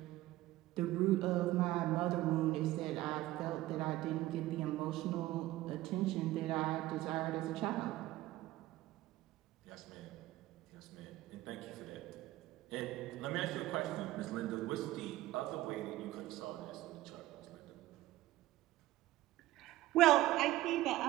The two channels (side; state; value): left; quieter; 16.4 dB